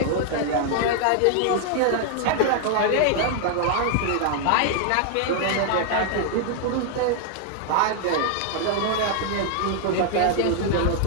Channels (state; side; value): different; both; correlation 0.00